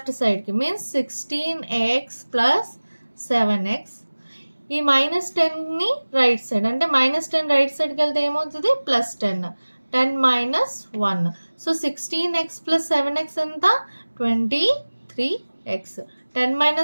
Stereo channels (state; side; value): inverted; both; correlation -1.00